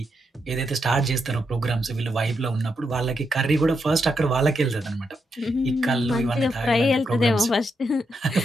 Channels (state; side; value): normal; both; correlation 0.82